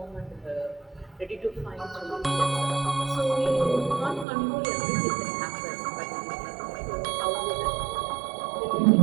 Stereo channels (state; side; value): drops out; left; at 4.2 s